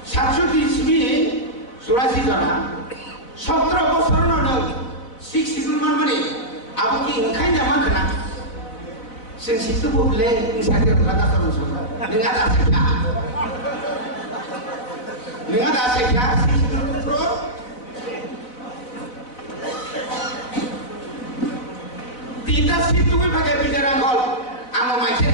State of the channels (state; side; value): late; right; 4.0 ms